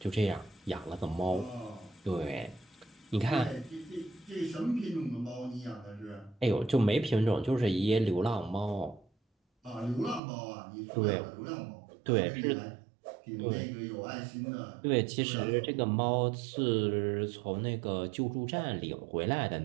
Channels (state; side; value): drops out; left; at 10.2 s